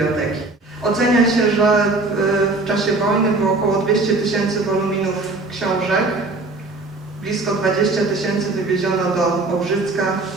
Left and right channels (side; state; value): left; quieter; 3.2 dB